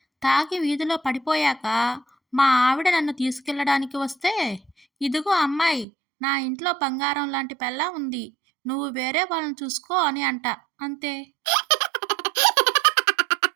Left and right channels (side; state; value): left; drops out; at 5.9 s